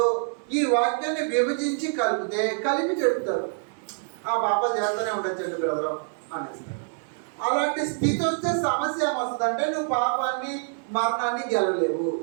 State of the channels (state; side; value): silent; left; 61 dB below the other